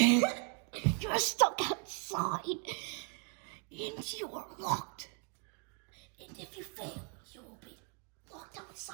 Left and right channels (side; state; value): left; quieter; 38.0 dB